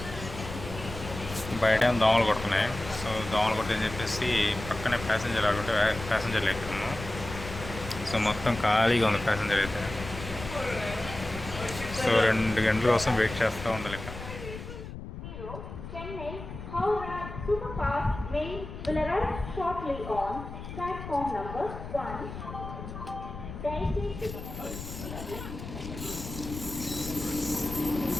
బయట ఏమో దోమలు కొడుతున్నాయి. సో దోమలు కొట్టని చెప్పేసి పక్కనే ప్యాసింజర్ ఆడుకుంటే ప్యాసింజర్లు ఎక్కుతున్నాము. సో మొత్తం ఖాళీగా ఉంది ప్యాసింజర్ అయితే. సో 2 గంటల కోసం వెయిట్ చేస్తూ ఉండాలి ఇక్కడ.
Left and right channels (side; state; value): left; noise; rumble, 10 dB below the sound